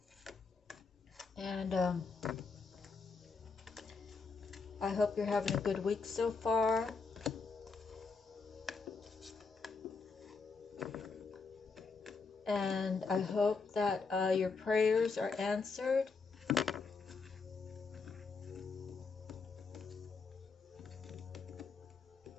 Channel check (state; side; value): quieter; right; 4.6 dB